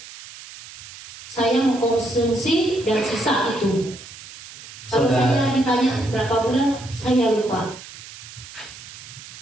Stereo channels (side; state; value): right; noise; hiss, 16 dB below the sound